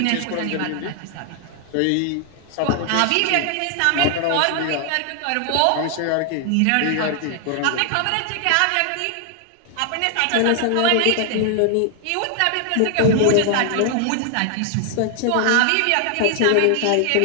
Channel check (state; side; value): different; both; correlation 0.00